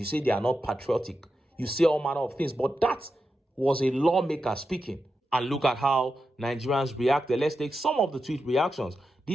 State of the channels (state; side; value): normal; both; correlation 0.89